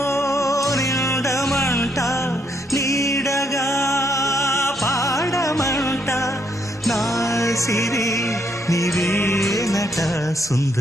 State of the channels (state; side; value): normal; both; correlation 0.73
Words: నిండమంట నీడగా పాడమంట నా సిరి నీవేనట